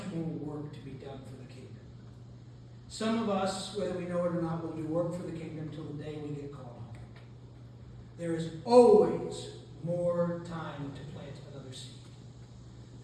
more work to be done for the kingdom. Some of us, whether we know it or not, will do work for the kingdom till the day we get called home. There is always more time to plant another seed.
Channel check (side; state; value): both; identical; correlation 1.00